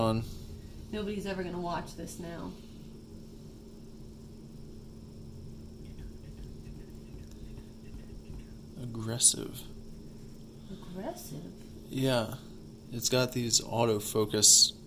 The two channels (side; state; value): both; identical; correlation 1.00